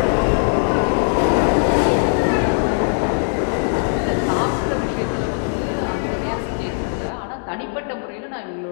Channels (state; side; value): silent; right; digital silence